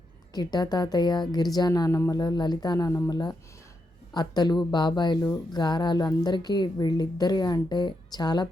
కిట్టా తాతయ్య, గిరిజా నానమ్మల, లలితా నానమ్మల అత్తలు, బాబాయిలు, గారాలు అందరికీ వీళ్ళిద్దరి అంటే చాలా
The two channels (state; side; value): normal; both; correlation 0.83